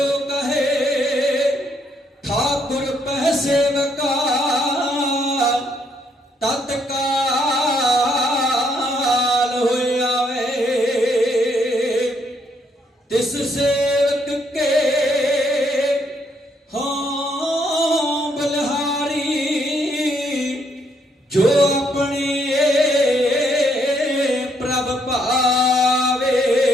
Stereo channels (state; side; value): normal; both; correlation 0.72